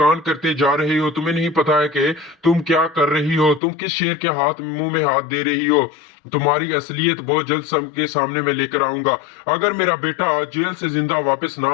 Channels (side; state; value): right; drops out; at 3.6 s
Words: کرتے جا رہی ہو، تمہیں نہیں پتا ہے کہ تم کیا کر رہی ہو، تم کس شیر کے منہ میں ہاتھ دے رہی ہو۔ تمہاری اصلیت بہت جلد سب کے سامنے میں لے کر آؤں گا۔ اگر میرا بیٹا جیل سے زندہ واپس نہ